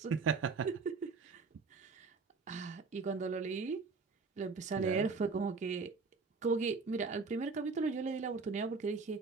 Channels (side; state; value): left; quieter; 4.5 dB